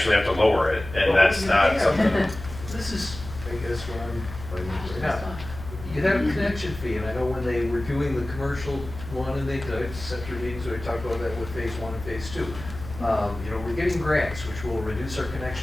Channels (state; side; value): noise; left; hum, 13 dB below the sound